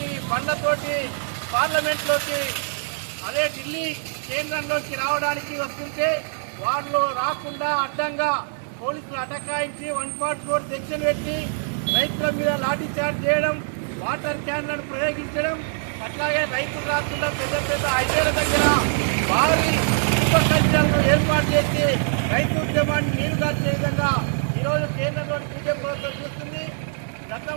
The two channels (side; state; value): left; silent; digital silence